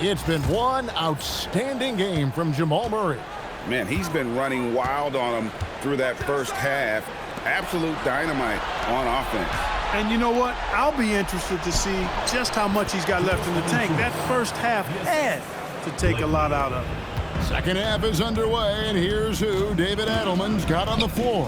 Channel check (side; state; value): both; identical; correlation 1.00